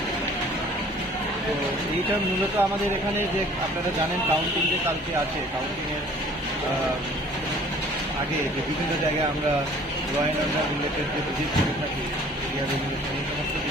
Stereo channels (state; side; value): normal; both; correlation 0.52